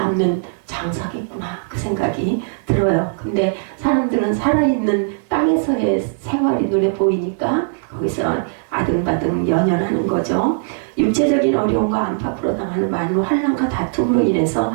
장사겠구나 그 생각이 들어요. 근데 사람들은 살아있는 땅에서의 생활이 눈에 보이니까 거기서 아등바등 연연하는 거죠. 육체적인 어려움과 안팎으로 당하는 많은 환난과 다툼으로 인해서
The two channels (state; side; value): silent; left; digital silence